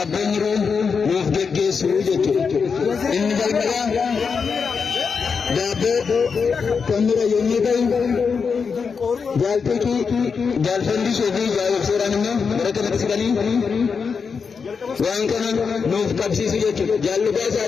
Mufdege Sujetu Inni Jalmaya Dabe Kamera Yunikai Jalpiki Jalfandi Sofi Jal Seranino Garakanaki Sigani Wankana Nuf Kalsisujetu Jaluka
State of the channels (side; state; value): right; quieter; 5.6 dB